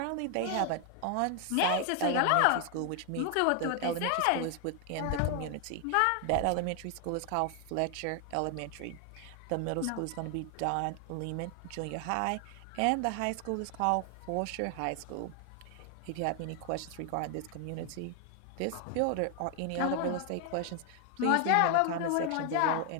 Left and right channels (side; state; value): both; different; correlation 0.00